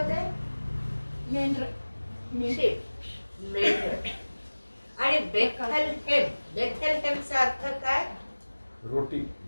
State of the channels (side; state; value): both; inverted; correlation -1.00